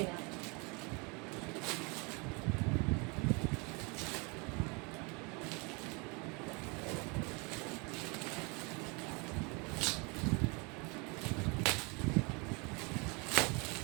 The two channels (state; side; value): quieter; left; 30.1 dB